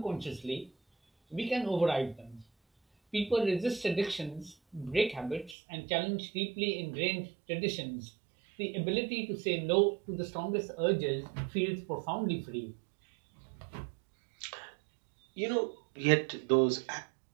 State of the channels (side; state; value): left; drops out; at 5.6 s